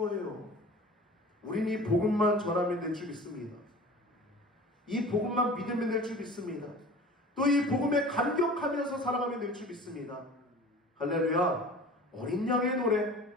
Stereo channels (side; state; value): both; normal; correlation 0.41